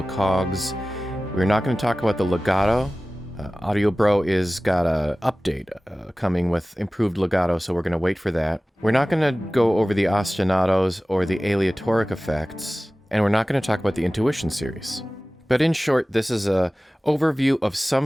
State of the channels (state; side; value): normal; both; correlation 0.97